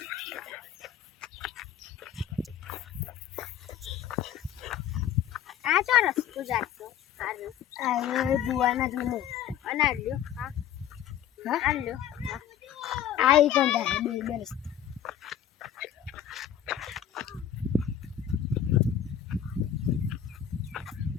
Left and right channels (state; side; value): quieter; right; 9.9 dB